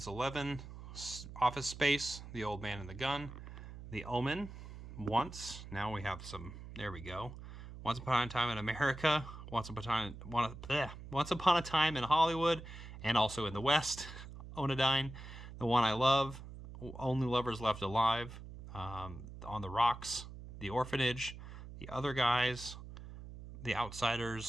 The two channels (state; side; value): noise; right; hum, 13 dB below the sound